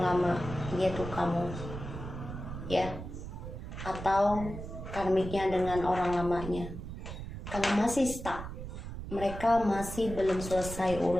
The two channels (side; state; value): right; noise; rumble, 9 dB below the sound